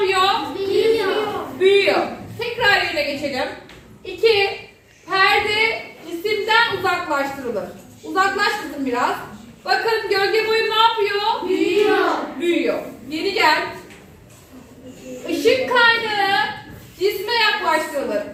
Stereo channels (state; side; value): identical; both; correlation 1.00